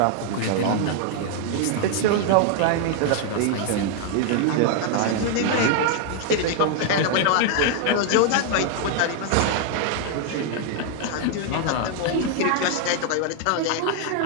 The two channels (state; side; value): different; both; correlation 0.00